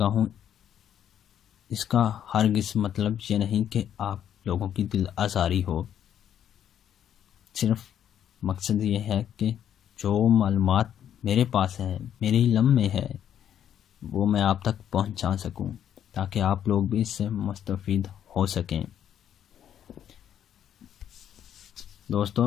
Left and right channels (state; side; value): quieter; right; 9.8 dB